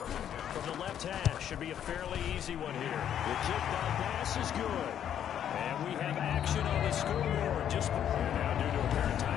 From the left hash, should be a fairly easy one here. The kick by pass is good. And we have action on the scoreboard. Just now due to apparent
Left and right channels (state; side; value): quieter; right; 9.7 dB